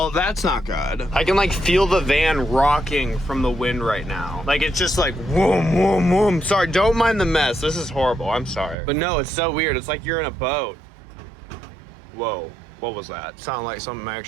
that's not good. I can like feel the van rocking from the wind right now. Like it's just like whoom, whoom, whoom. Sorry, don't mind the mess. This is horrible, I'm sorry. But no, it's so weird. It's like you're in a boat. Whoa, what was that? Sounded like something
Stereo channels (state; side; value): drops out; left; at 8.8 s